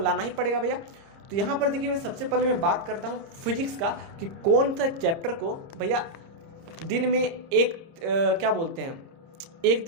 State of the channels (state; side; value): late; left; 30 ms